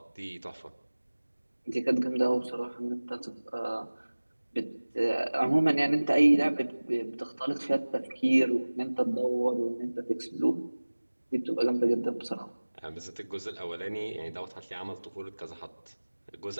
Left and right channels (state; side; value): inverted; both; correlation -1.00